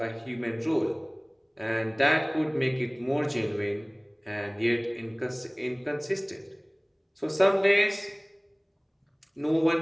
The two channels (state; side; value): identical; both; correlation 1.00